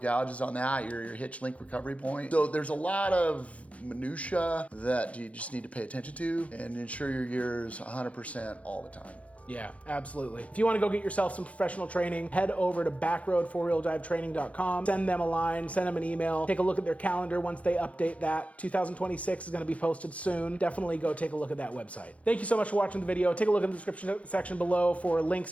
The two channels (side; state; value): right; late; 0.065 ms